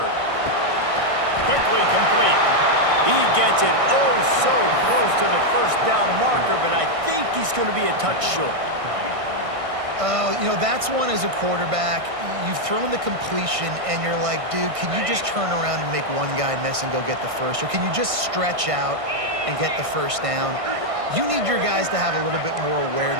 Quickly complete. He gets it oh so close to the first down marker, but I think he's going to be a touch short. You know, that's one as a quarterback. You've thrown the completion, and you're like, dude, can you just turn around and make one guy miss and go get the first? Or can you just stretch out and get the first down? You need your guys to have a little bit more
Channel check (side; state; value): left; late; 1.6 ms